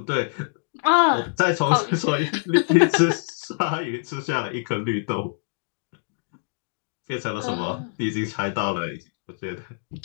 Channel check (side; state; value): right; silent; digital silence